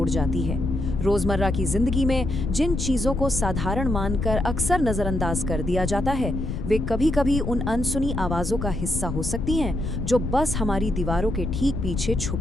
जाती है। रोजमर्रा की जिंदगी में जिन चीजों को साधारण मानकर अक्सर नजरअंदाज कर दिया जाता है, वे कभी-कभी उन अनसुनी आवाजों का हिस्सा हो सकती हैं जो बस हमारी दीवारों के ठीक पीछे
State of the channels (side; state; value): left; noise; rumble, 4 dB below the sound